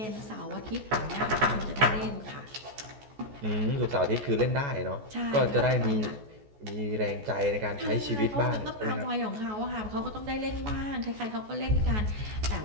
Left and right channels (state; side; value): late; left; 14 ms